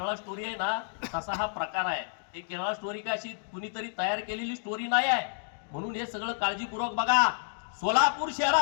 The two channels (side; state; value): right; silent; digital silence